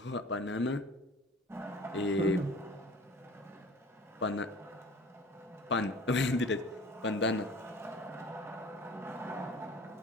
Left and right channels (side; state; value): both; normal; correlation 0.45